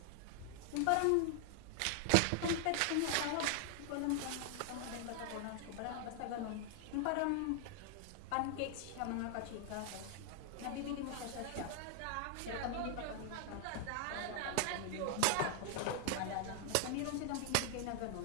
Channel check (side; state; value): both; different; correlation 0.00